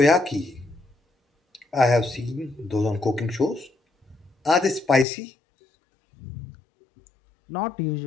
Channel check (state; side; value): drops out; right; at 5.1 s